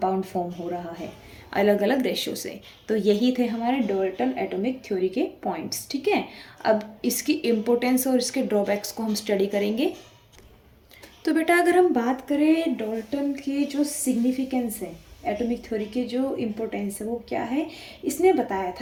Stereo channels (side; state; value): both; identical; correlation 1.00